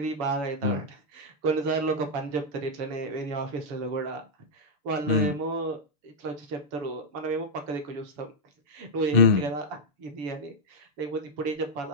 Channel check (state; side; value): late; left; 6.8 ms